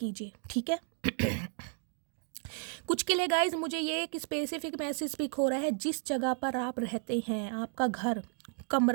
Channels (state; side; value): silent; left; 56 dB below the other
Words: ठीक है। कुछ के लिए गाइज मुझे ये एक स्पेसिफिक मैसेज पिक हो रहा है, जिस जगह पर आप रहते हैं, आपका घर,